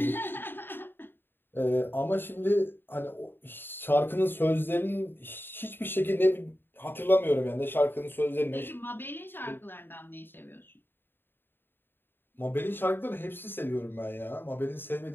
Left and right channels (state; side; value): late; right; 0.099 ms